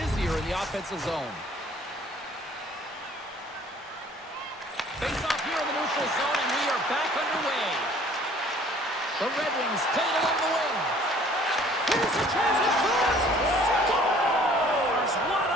in the offensive zone. Face off here in the neutral zone, and we are back underway. The Red Wings play it along the wing. Here's a chance at front. Scores! What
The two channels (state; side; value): normal; both; correlation 0.55